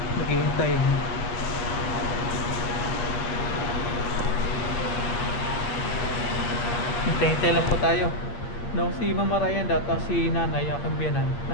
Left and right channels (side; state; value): right; late; 8.6 ms